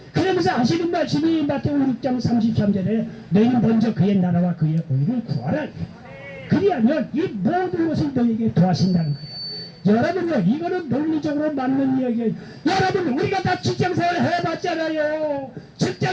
그러면서 하시는 말씀이 마태복음 6장 33절에 너희는 먼저 그의 나라와 그의 의를 구하라. 그리하면 이 모든 것을 너희에게 더하신다는 거예요. 여러분요 이거는 논리적으로 맞는 이야기예요. 여러분 우리가 다 직장생활 해봤잖아요.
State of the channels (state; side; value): identical; both; correlation 1.00